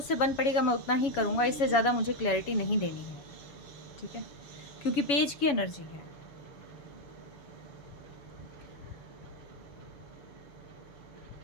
बन पड़ेगा मैं उतना ही करूँगा, इससे ज़्यादा मुझे क्लैरिटी नहीं देनी है, ठीक है? क्योंकि पेज की एनर्जी है।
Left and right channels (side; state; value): right; late; 7.1 ms